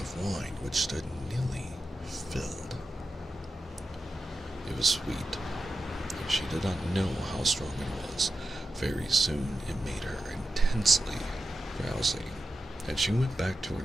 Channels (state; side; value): normal; both; correlation 0.91